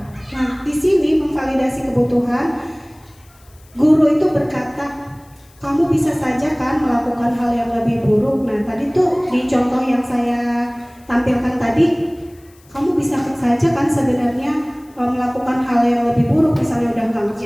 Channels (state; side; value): noise; left; hiss, 30 dB below the sound